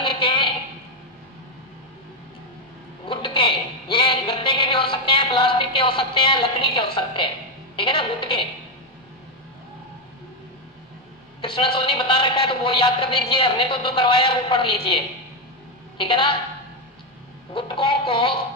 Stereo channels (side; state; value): both; normal; correlation 0.05